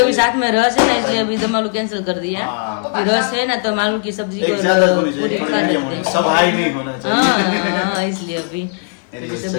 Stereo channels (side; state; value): right; quieter; 40.0 dB